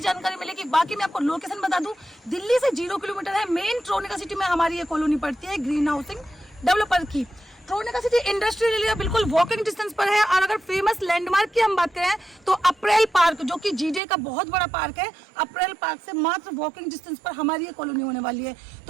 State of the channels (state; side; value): drops out; left; at 14.0 s